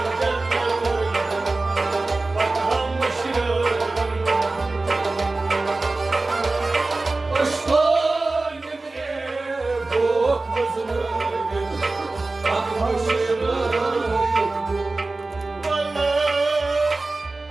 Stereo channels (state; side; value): quieter; left; 3.3 dB